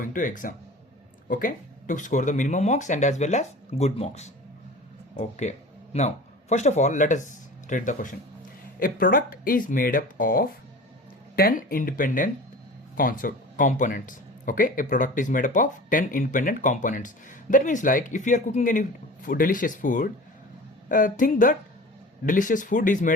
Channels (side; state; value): both; normal; correlation 0.38